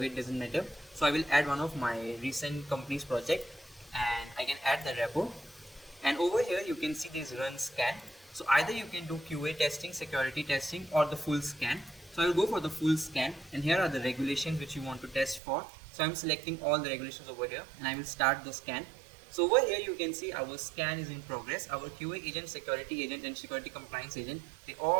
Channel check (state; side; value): drops out; left; at 15.4 s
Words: doesn't matter. So I will add one of my recent company's project and I can add the repo. And over here you can see this run scan. So either you can do QA testing, security testing, or the full scan. So I will go for the full scan, and here are the regulations which you want to test for. So I'm selecting all the regulations over here and I will start the scan. So over here you can see our scan is in progress. Our QA agent, security agent and security compliance agent, they